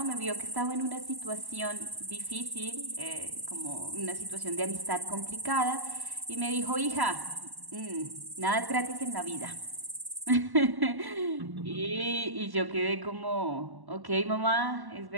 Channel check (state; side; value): late; left; 1.1 ms